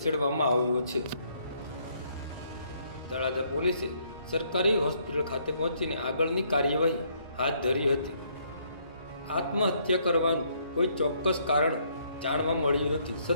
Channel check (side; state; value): both; inverted; correlation -0.69